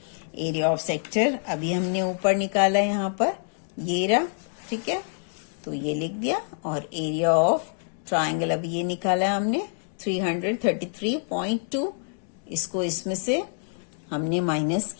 Area of sector अभी हमने ऊपर निकाला है, यहाँ पर ये रहा, ठीक है, तो ये लिख दिया. और एरिया ऑफ ट्राइंगल अभी ये निकाला हमने 333.2. इसको इसमें से हमने माइनस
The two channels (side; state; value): right; silent; digital silence